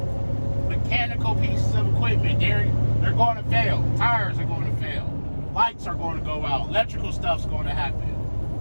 mechanical pieces of equipment. They're going to fail. Tires are going to fail. Lights are going to go out. Electrical stuff's going to happen.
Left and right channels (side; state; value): both; inverted; correlation -1.00